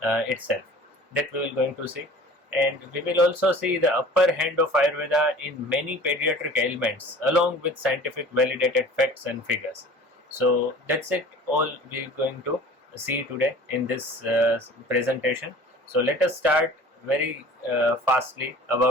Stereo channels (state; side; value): normal; both; correlation 0.44